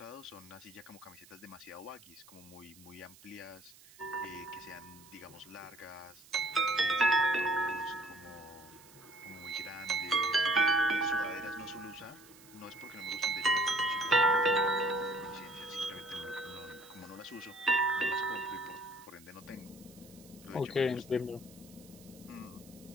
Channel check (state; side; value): noise; right; hiss, 22 dB below the sound